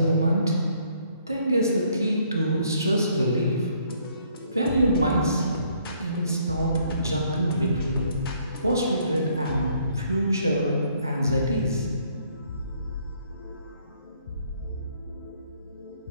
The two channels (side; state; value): both; inverted; correlation -0.66